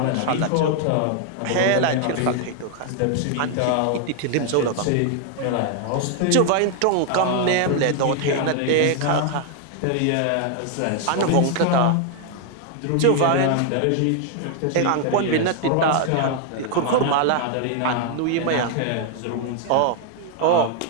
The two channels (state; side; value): different; both; correlation 0.00